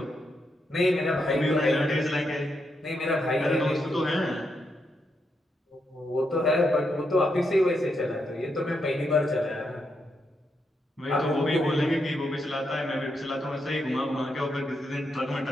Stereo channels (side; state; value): both; normal; correlation 0.81